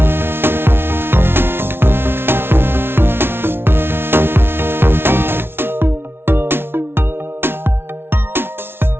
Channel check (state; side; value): late; left; 0.11 ms